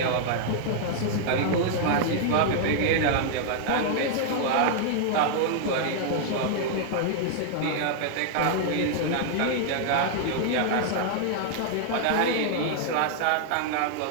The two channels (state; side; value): different; both; correlation -0.01